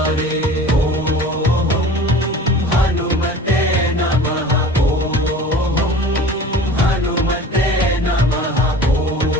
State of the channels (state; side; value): normal; both; correlation 0.41